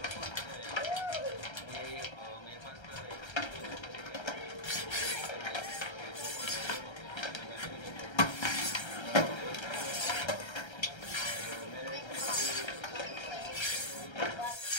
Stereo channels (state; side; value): late; right; 1.3 ms